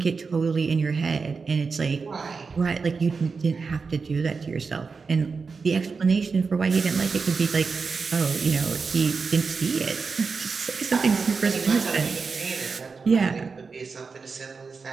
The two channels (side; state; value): left; quieter; 4.9 dB